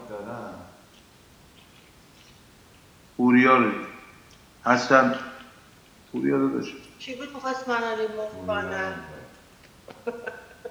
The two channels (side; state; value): both; identical; correlation 1.00